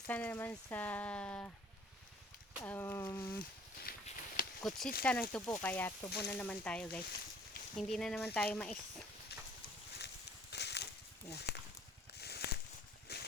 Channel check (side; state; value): both; normal; correlation 0.54